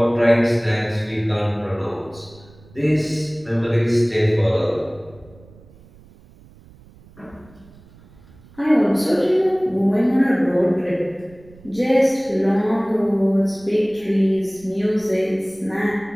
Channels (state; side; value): noise; right; rumble, 25 dB below the sound